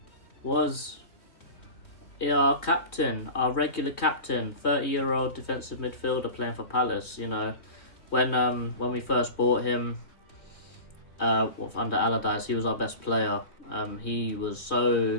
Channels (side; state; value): right; late; 2.9 ms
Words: was our captain, our regular captain, 30-year-old defensive midfielder playing for Palace. You know, when we first bought him under Allardyce, he was our best player. He was